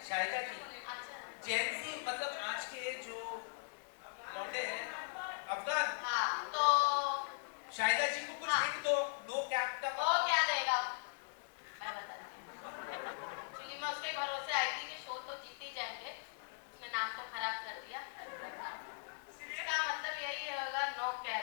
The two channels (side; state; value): right; silent; digital silence